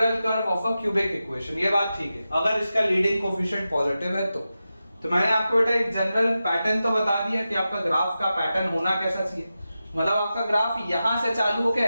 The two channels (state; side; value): inverted; both; correlation -0.92